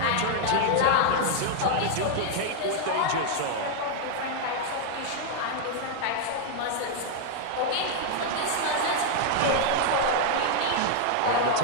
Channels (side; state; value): both; different; correlation 0.00